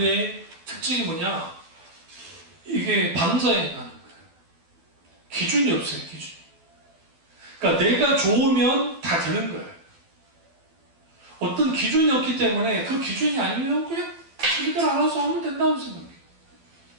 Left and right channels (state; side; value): late; left; 12 ms